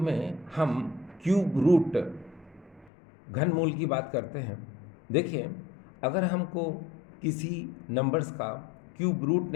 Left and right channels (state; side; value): drops out; right; at 2.9 s